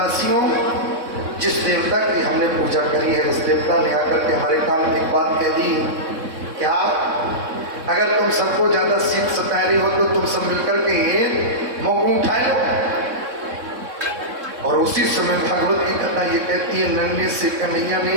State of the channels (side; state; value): left; late; 3.7 ms